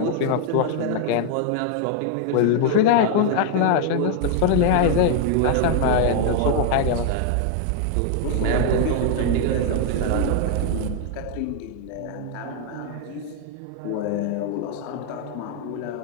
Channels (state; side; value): different; both; correlation 0.00